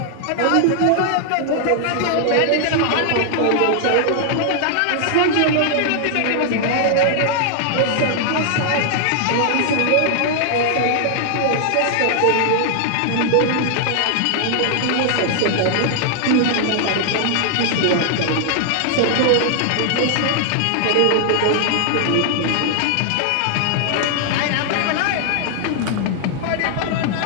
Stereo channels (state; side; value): different; both; correlation 0.00